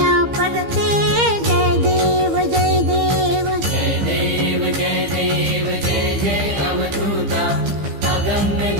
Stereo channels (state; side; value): late; left; 15 ms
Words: परते जय देव जय देव जय देव जय देव जय जय अवधूता अगम्य